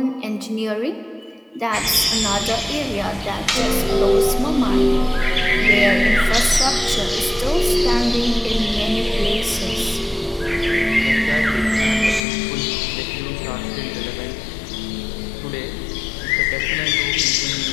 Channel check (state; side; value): drops out; right; at 12.2 s